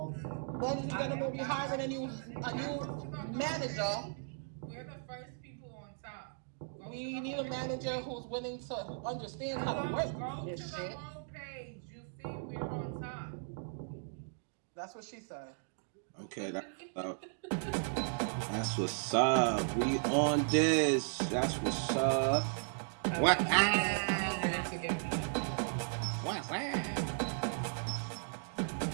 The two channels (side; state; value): left; silent; digital silence